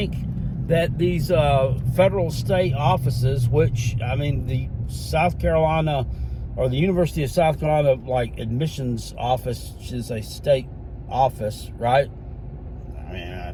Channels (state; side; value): identical; both; correlation 1.00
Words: that these federal state offices, which, I mean, the South Carolina or the University of South Carolina, like, admissions office is a state office, right? I mean,